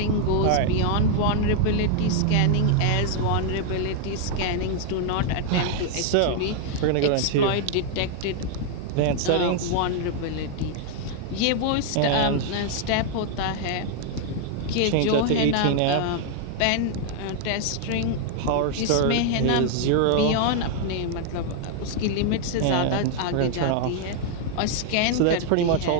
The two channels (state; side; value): different; both; correlation 0.00